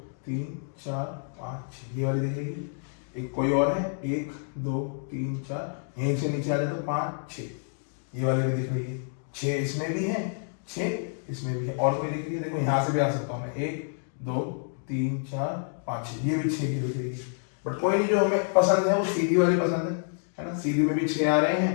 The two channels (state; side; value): silent; right; digital silence